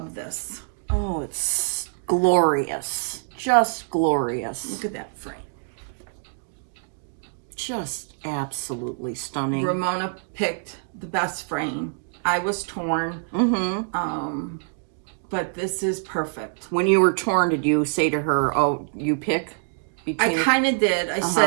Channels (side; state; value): left; silent; digital silence